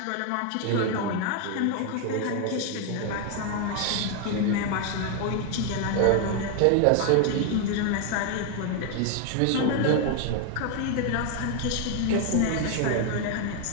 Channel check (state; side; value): different; both; correlation 0.01